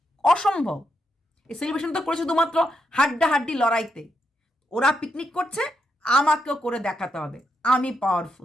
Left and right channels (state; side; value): normal; both; correlation 0.82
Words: অসম্ভব। এই সেলিব্রেশন তো করেছো শুধুমাত্র হাড্ডাহাড্ডি লড়াইতে, ওরা পিকনিক করছে, আমাকেও করে দেখাতে হবে আমি